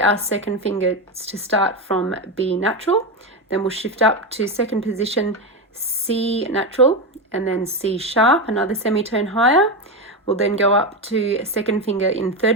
second finger to start from B natural, then we'll shift up to second position C natural and then C sharp, another semitone higher. We'll then go up to second finger in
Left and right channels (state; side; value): normal; both; correlation 0.14